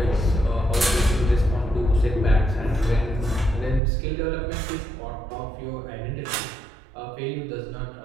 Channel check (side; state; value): left; drops out; at 3.8 s